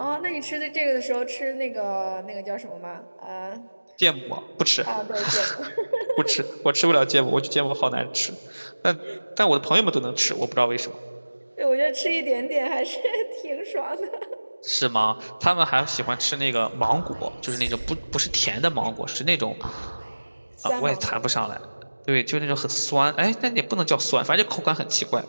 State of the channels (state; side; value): inverted; both; correlation -1.00